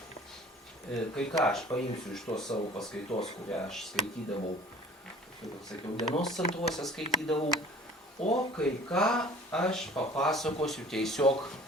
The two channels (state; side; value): normal; both; correlation 0.47